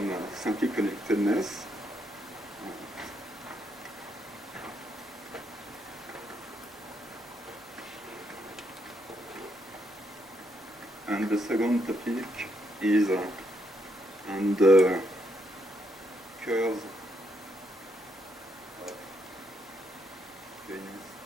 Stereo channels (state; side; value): normal; both; correlation 0.77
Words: simply connectedness. And the second topic is on the curves of values